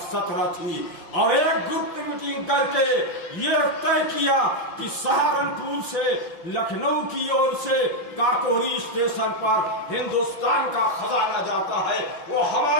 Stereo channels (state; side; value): late; right; 5.8 ms